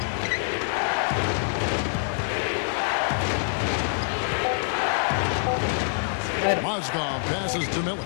Mozgov passes to Miller.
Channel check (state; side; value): silent; right; 61 dB below the other